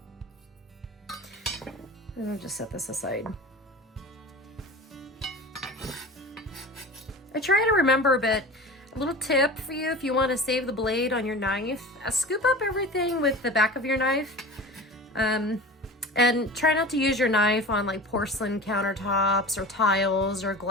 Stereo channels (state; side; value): normal; both; correlation 0.35